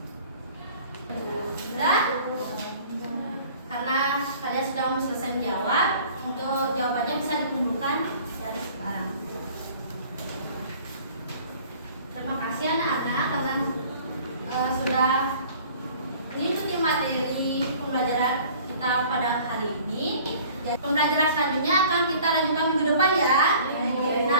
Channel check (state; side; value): inverted; both; correlation -0.50